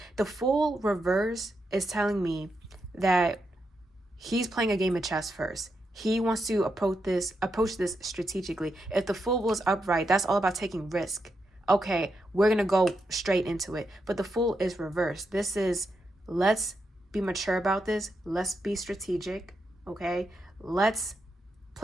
The Fool reverse is telling me that he's playing a game of chess first. He wants to approach this strategically. If the Fool was upright, that's all about taking risk. Okay, we're going to go straight into it. But the Fool is reversed. This is, let's be mature about this. Let's be strategic. Okay, let's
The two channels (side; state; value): both; normal; correlation 0.84